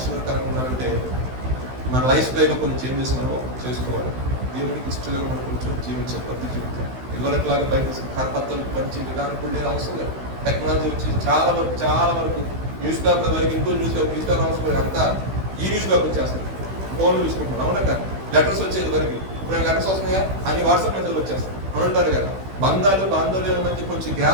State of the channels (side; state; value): left; late; 16 ms